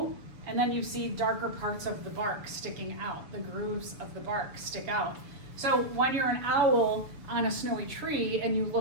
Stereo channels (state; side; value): late; left; 6.9 ms